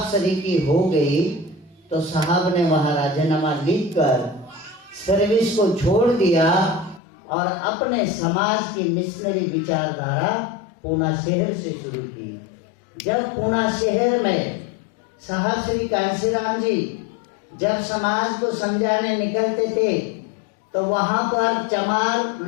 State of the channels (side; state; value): right; drops out; at 7.0 s